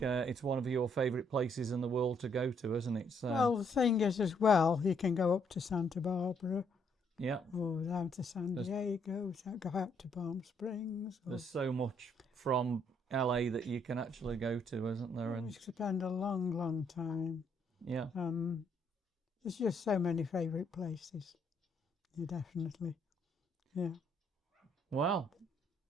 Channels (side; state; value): both; normal; correlation 0.70